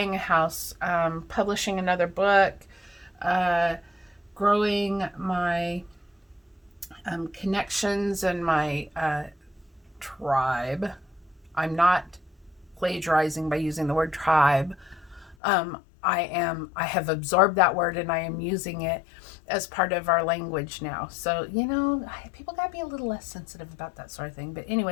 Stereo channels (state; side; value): drops out; right; at 15.4 s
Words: a house, publishing another book, growing my connections and my tribe. I'm not plagiarizing by using the word tribe. I have absorbed that word and I am using it as part of our language now. So, people got to be a little less sensitive about that sort of thing. But